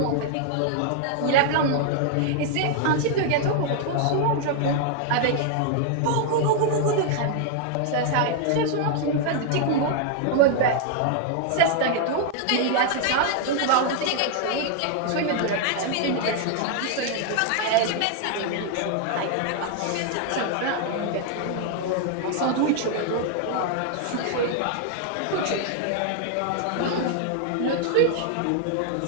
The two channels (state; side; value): different; both; correlation 0.00